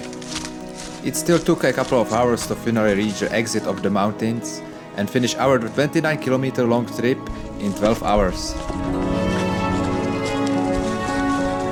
It still took a couple of hours to finally reach the exit of the mountains and finish our 29-kilometer long trip in 12 hours.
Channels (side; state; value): both; identical; correlation 1.00